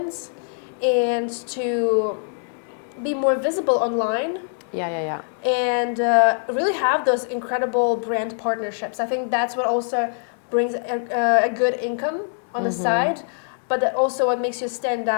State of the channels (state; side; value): silent; right; 63 dB below the other